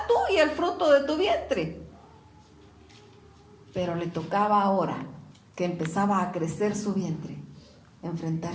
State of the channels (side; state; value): both; identical; correlation 1.00